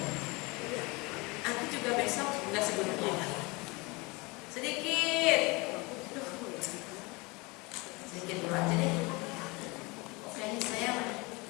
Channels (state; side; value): quieter; right; 25.8 dB